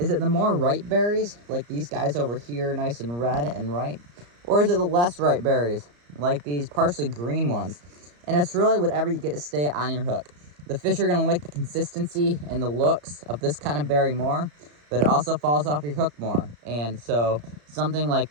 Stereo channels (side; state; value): left; late; 34 ms